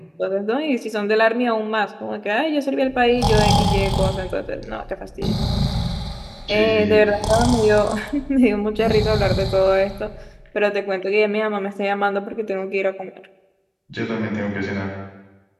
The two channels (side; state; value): both; identical; correlation 1.00